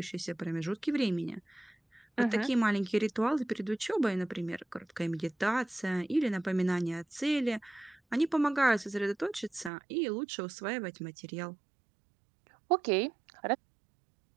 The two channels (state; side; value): drops out; left; at 9.7 s